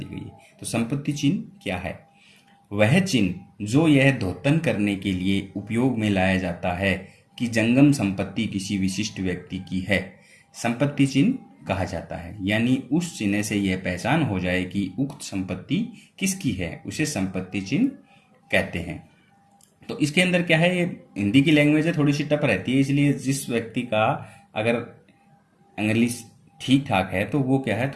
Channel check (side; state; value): both; identical; correlation 1.00